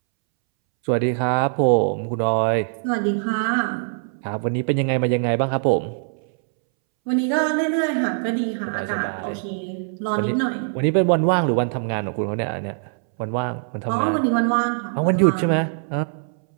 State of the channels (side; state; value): left; silent; 64 dB below the other